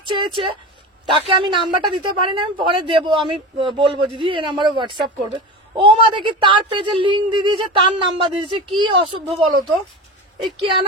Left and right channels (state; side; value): normal; both; correlation 0.27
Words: চেয়েছে, তাকে আমি নাম্বারটা দিতে পারি না, আমি পরে দেবো, আমি বলবো দিদি এই নাম্বারে হোয়াটসঅ্যাপ করবে। ও মা দেখি তার পেজে লিঙ্ক দিয়ে দিয়েছে, তার নাম্বার দিয়েছে। কি অসভ্য বলো তো, এই কেন